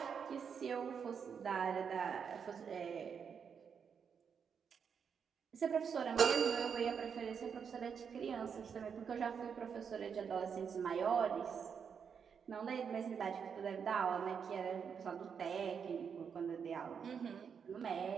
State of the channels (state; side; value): quieter; left; 6.8 dB